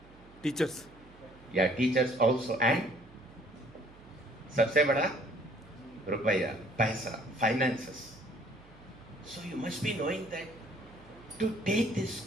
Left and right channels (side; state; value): right; noise; hum, 23 dB below the sound